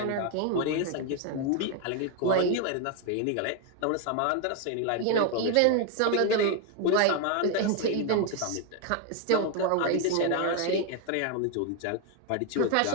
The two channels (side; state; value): both; different; correlation 0.01